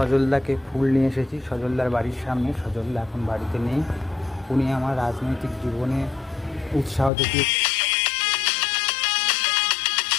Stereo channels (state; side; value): drops out; right; at 7.1 s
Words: ফুল নিয়ে এসেছি সজলদার বাড়ির সামনে। সজলদা এখন বাড়িতে নেই। উনি আমার রাজনৈতিক জীবনে উৎসাহ দেখিয়ে